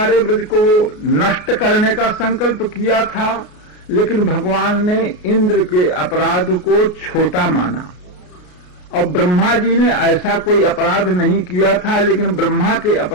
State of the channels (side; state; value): right; late; 33 ms